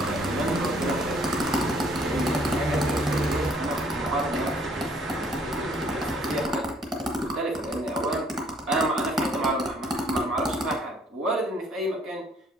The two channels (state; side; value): normal; both; correlation 0.61